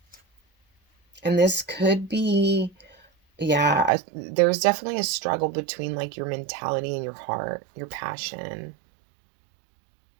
And this could be, yeah, there's definitely a struggle between like your mentality and your heart, your passion.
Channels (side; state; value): left; drops out; at 3.9 s